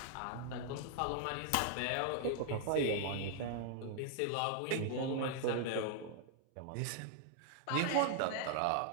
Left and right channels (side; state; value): both; different; correlation 0.00